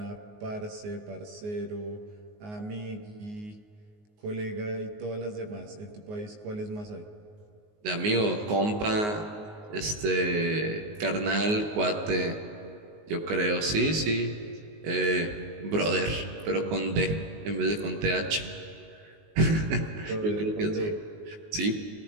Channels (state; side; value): late; left; 19 ms